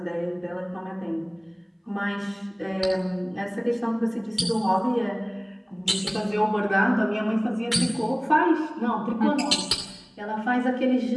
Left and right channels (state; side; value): identical; both; correlation 1.00